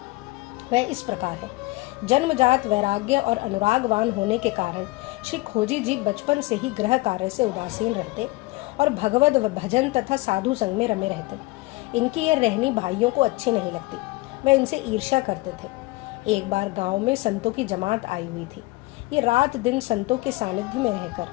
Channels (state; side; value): quieter; right; 21.8 dB